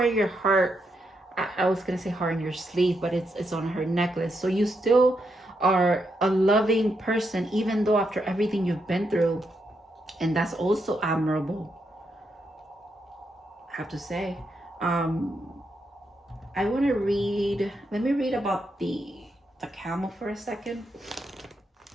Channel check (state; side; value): normal; both; correlation 0.81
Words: your heart, I was gonna say heart on your sleeve, but it's on her necklace. So you still are a loving person, even though after everything you've been through, and that's also admirable, I have to say. I want to read, let me read about the camel for a second.